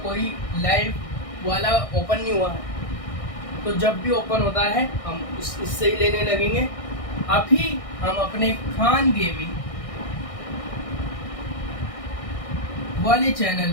कोई लाइव वाला ओपन नहीं हुआ है, तो जब भी ओपन होता है हम इससे ही लेने लगेंगे। अभी हम अपने खान गेमिंग वाले चैनल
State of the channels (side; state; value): right; late; 1.6 ms